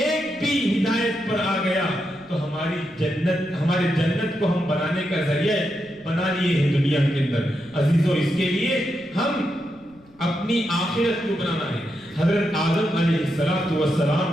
بھی ہدایت پر آ گیا تو ہماری جنت، ہمارے جنت کو ہم بنانے کا ذریعہ بنا لیے ہیں دنیا کے اندر۔ عزیزوں، اس کے لیے ہم اپنی آخرت کو بنانا ہے۔ حضرت آدم علیہ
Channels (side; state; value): left; noise; rumble, 28 dB below the sound